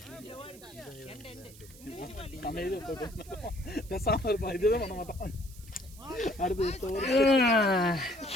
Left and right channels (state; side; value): noise; right; hiss, 20 dB below the sound